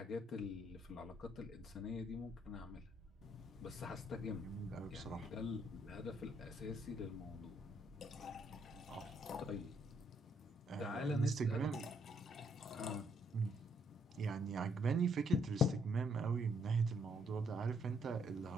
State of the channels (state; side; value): normal; both; correlation 0.71